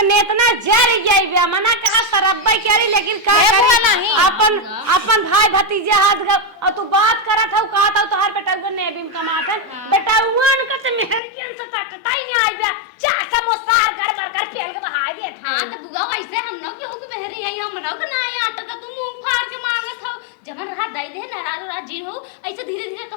नेतना जर गई मना कहा सरब्बा करी लेकिन का करी अपन अपन भाई भतीजे हाथ गए और तू बात करत हो कहा था तो हर बेटा को नेबी में कमात है बेटा उन का से मेहर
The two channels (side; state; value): right; drops out; at 11.2 s